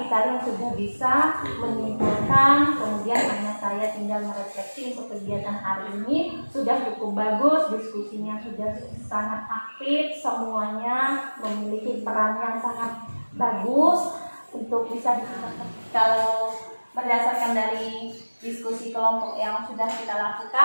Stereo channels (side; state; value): both; inverted; correlation -1.00